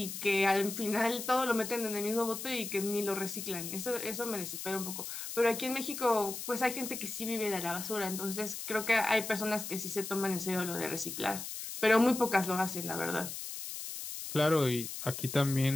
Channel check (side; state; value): left; noise; hiss, 7 dB below the sound